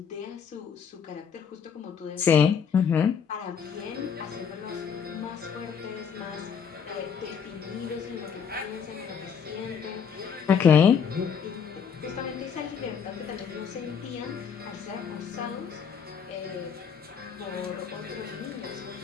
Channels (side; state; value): right; quieter; 7.0 dB